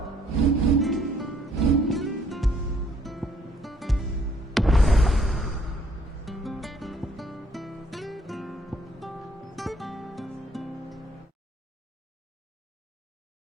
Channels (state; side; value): normal; both; correlation 0.64